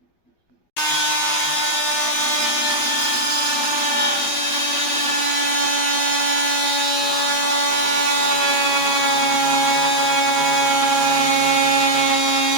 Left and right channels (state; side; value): late; right; 12 ms